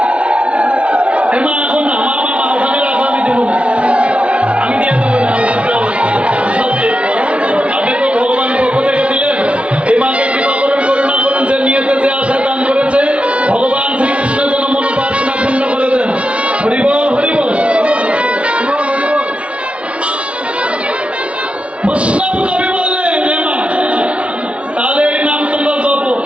এ মা এখন না, মা মা মা ওখানে রাখো, আমি দেবো না, আমি দিয়ে দেবো না। সব দিয়ে দেবো। আপনি তো ভগবান পক্ষ থেকে দিলেন। এই মাকে কৃপা করুন, করুণা করুন। যে নিয়েতে যে আশা দান করেছে ভগবান শ্রীকৃষ্ণ যেন মনোবাসনা পূর্ণ করে দেন। হরি বল, হরি বল। বৈষ্ণব কবি বললেন, হে মা, তাহলে এই নাম তোমরা জপো।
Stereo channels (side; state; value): left; late; 0.061 ms